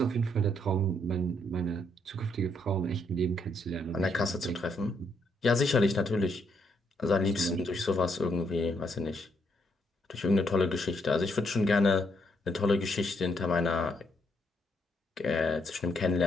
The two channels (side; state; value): both; normal; correlation 0.74